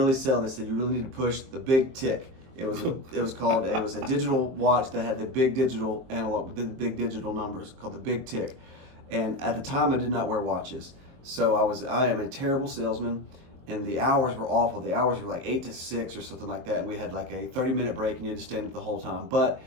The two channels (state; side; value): late; left; 23 ms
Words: selling, they said you really need to push the big tick. It was a digital watch that had the big digital analog, the big digital numbers, called the big tick. And at the time, I did not wear watches. So I am a terrible salesman, and the hours were awful. The hours were like 8 to 6 or something like that, and we had like a 30-minute break, and you had to stand up the whole time. But